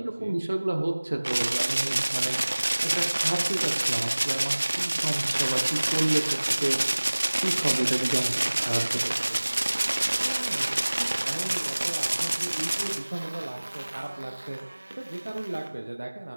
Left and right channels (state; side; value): inverted; both; correlation -1.00